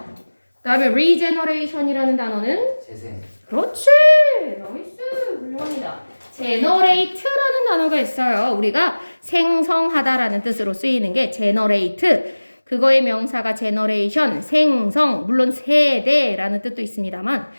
그다음에 regeneration이라는 단어는 재생. 그렇지, 나이스, 훌륭합니다. generate라는 단어가 있어요. 우리가 생성하다라는 뜻으로 쓰이는 게 generate. 그거의 명사가 generation, 생성, 물론 세대라는 뜻도 있습니다만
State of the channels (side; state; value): both; inverted; correlation -1.00